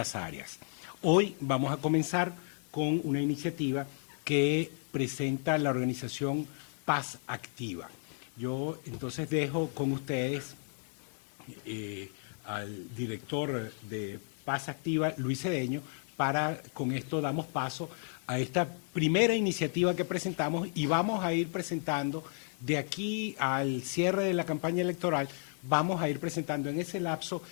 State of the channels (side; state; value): right; silent; 56 dB below the other